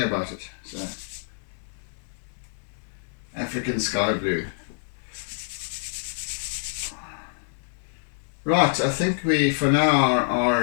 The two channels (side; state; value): right; silent; 60 dB below the other